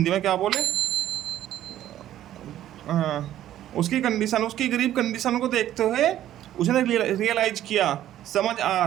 में क्या बोले, उसकी कंडीशन, उसकी गरीब कंडीशन को देखते हुए उसने रियलाइज किया, समझ आ,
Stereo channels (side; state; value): left; quieter; 12.4 dB